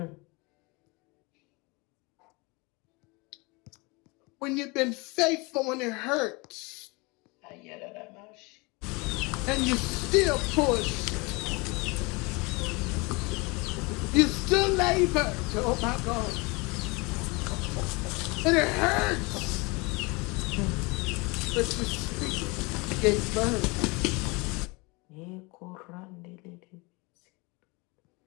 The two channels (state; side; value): quieter; right; 26.8 dB